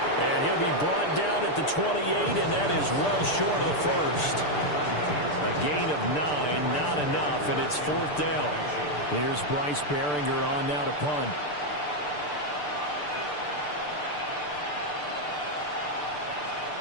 And he'll be brought down at the 28, and that is well short of the 1st. A gain of 9, not enough, and it's 4th down. Here's Bryce Behringer on now to punt.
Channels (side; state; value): right; late; 6.8 ms